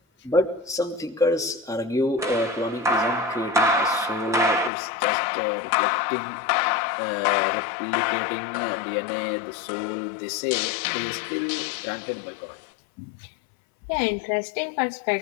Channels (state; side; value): drops out; right; at 4.7 s